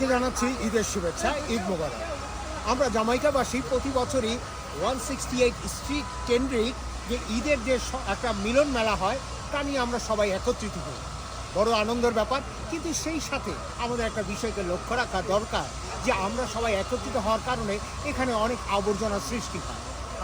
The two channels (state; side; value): identical; both; correlation 1.00